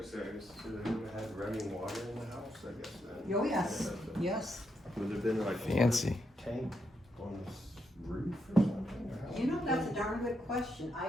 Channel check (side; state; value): both; normal; correlation 0.81